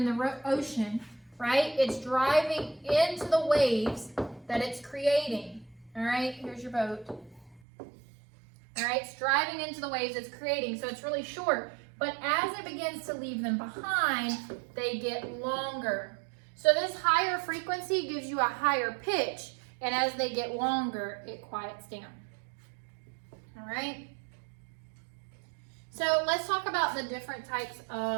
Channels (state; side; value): drops out; left; at 7.6 s